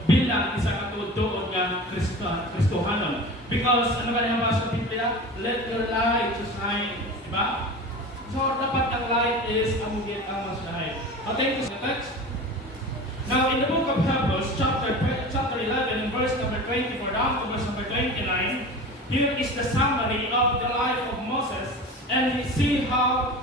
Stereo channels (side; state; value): both; normal; correlation 0.34